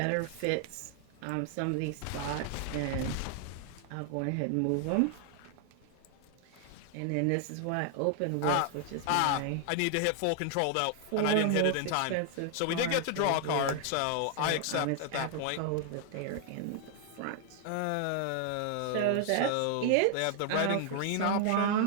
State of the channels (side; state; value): both; different; correlation 0.00